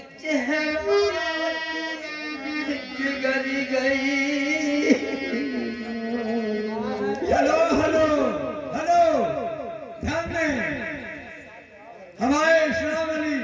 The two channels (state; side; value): identical; both; correlation 1.00